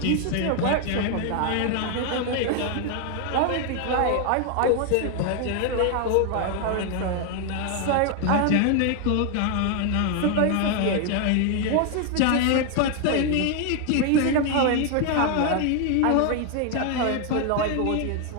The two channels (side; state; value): both; different; correlation 0.00